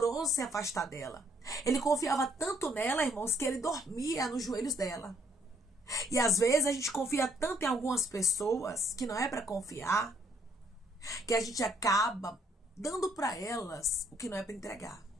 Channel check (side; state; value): both; normal; correlation 0.68